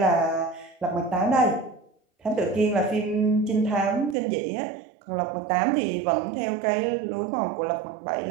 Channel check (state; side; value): drops out; left; at 4.2 s